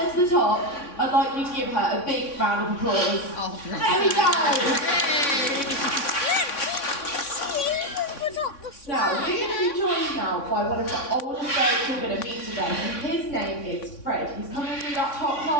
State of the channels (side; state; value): right; late; 3.6 ms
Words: to the top, I'd like you to give her a big round of applause. Oh, there we go! Now, we're going to be joined now by one of the oldest birds we're going to meet today. And his name is Fred. He's coming through that top